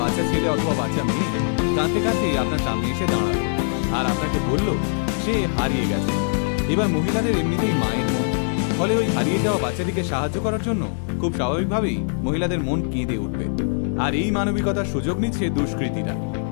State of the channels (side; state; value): right; silent; 62 dB below the other